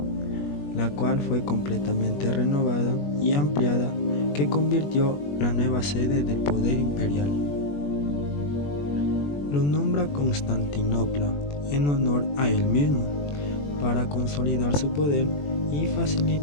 la cual fue completamente renovada y ampliada, que convirtió la nueva sede del poder imperial. Lo nombra Constantinopla en honor a él mismo, para consolidar su poder y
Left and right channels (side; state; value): right; late; 21 ms